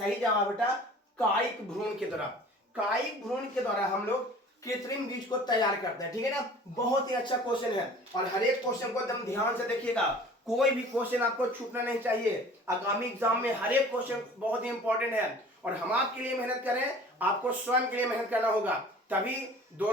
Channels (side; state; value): both; normal; correlation 0.46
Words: जवाब बेटा कायिक भ्रूण के द्वारा। कायिक भ्रूण के द्वारा हम लोग कृत्रिम बीज को तैयार करते हैं। ठीक है ना, बहुत ही अच्छा क्वेश्चन है, और हर एक क्वेश्चन को एकदम ध्यान से देखिएगा, कोई भी क्वेश्चन आपको छूटना नहीं चाहिए। आगामी एग्जाम में हर एक क्वेश्चन बहुत ही इंपॉर्टेंट है, और हम आपके लिए मेहनत करें, आपको स्वयं के लिए मेहनत करना होगा, तभी